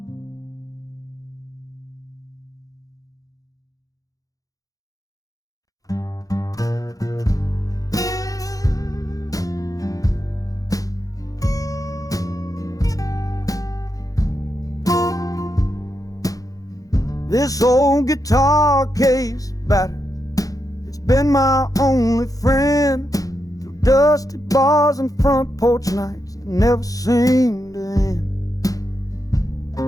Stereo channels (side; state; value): right; late; 0.17 ms